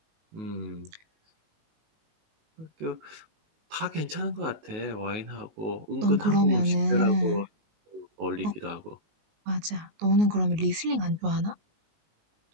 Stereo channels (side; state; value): left; late; 19 ms